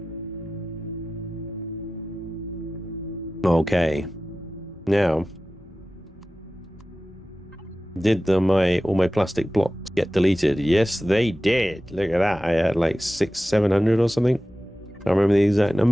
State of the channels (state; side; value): normal; both; correlation 0.95